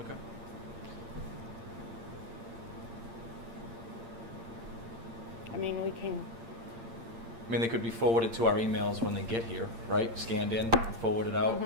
I mean, we can, I mean, they could be forwarded to our emails when they get here, right? Scanned in, and forwarded out,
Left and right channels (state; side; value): late; left; 8.7 ms